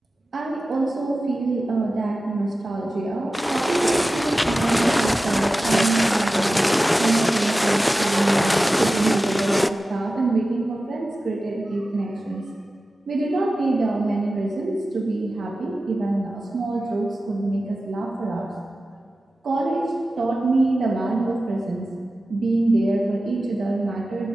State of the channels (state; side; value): normal; both; correlation 0.94